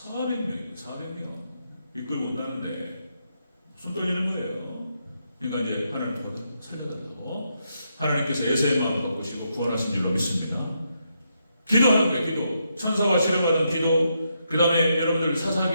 이끌고 온다는데 손 떨리는 거예요. 그러니까 이제 하나님 살려달라고 하나님께서 에서의 마음을 바꾸시고 구원하신 줄로 믿습니다. 기도하는 거예요. 기도. 천사와 씨름하던 기도. 그 다음에 여러분들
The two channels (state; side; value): inverted; both; correlation -0.80